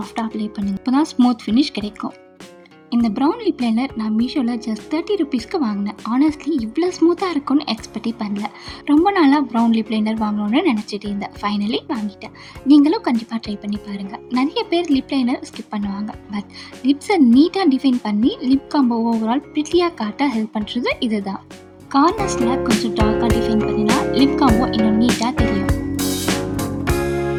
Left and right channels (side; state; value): both; identical; correlation 1.00